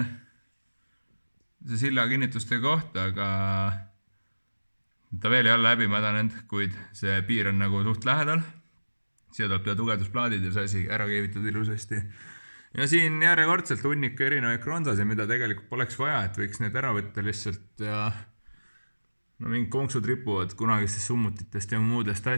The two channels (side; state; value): both; inverted; correlation -1.00